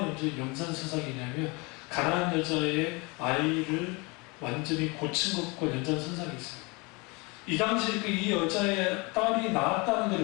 연장선상이냐면 가난한 여자의 아이를 완전히 고친 것과 연장선상이 있어요. 이 당시에 이 여자의 딸이 낳았다는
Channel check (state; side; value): quieter; right; 27.8 dB